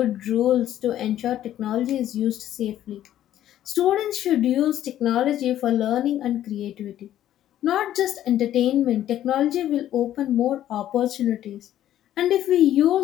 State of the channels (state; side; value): quieter; right; 12.1 dB